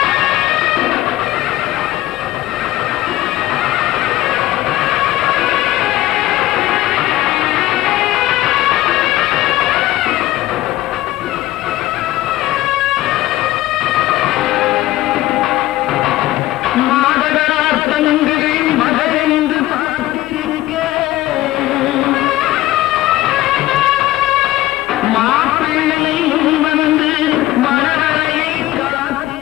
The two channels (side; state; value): right; quieter; 16.1 dB